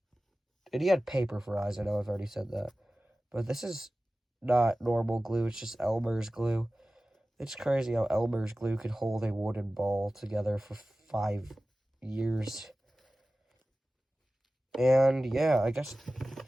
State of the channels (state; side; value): normal; both; correlation 0.96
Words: And he had paper for eyes, I know I've already said that. But this is not normal glue, it's just Elmer's glue. It's crazy how Elmer's glue could hold a wooden ball together for 5 years. And yeah, I guess...